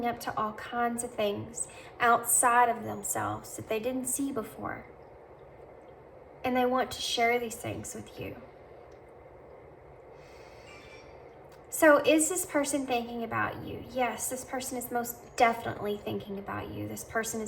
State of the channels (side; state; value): both; identical; correlation 1.00